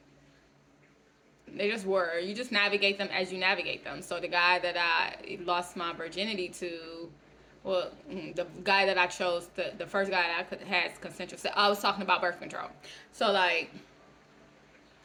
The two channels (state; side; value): identical; both; correlation 1.00